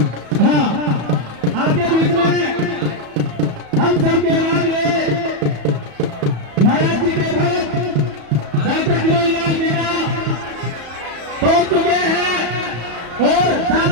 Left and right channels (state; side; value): late; left; 34 ms